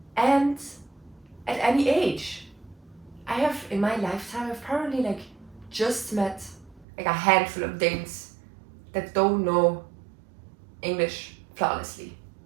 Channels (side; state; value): left; drops out; at 6.9 s